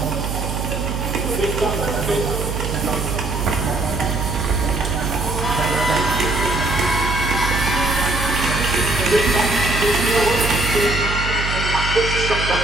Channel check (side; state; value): right; noise; hum, 3 dB below the sound